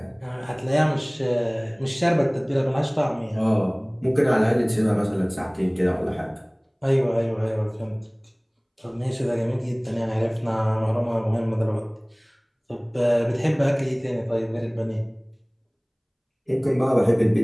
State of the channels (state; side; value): identical; both; correlation 1.00